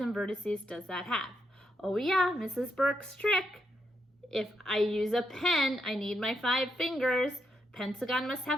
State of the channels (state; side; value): normal; both; correlation 0.81